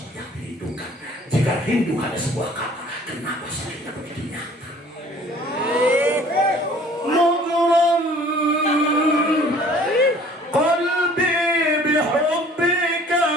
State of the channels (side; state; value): both; normal; correlation 0.52